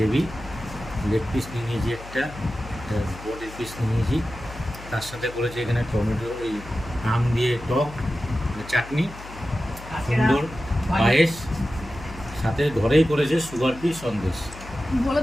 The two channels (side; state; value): left; noise; hum, 15 dB below the sound